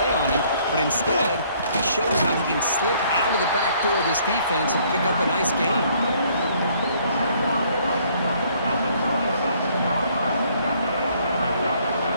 on him, but instead, he shows how he can slip out of the back door of this defense and pick up a nice gain.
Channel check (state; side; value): inverted; both; correlation -0.63